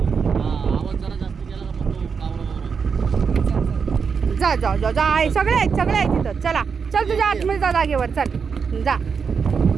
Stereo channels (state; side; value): quieter; left; 5.9 dB